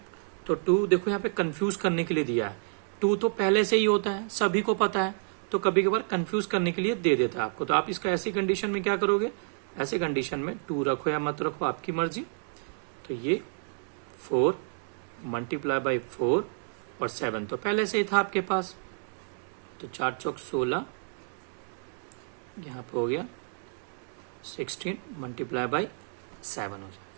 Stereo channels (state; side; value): silent; left; digital silence